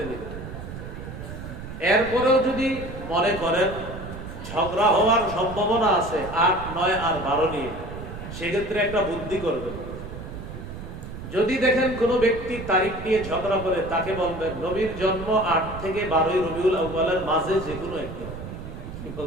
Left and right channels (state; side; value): noise; right; rumble, 10 dB below the sound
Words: নিন। এরপরেও যদি মনে করেন ঝগড়া হওয়ার সম্ভাবনা আছে 8, 9 আর 12 নিয়ে, সেক্ষেত্রে একটা বুদ্ধি করবেন। যদি দেখেন কোন ব্যক্তি তারিখ নিয়ে ঝগড়া করে, তাকে বলবেন নবীর জন্ম 8 থেকে 12ই রবিউল আউয়ালের মাঝে যে কোনো একদিন। কি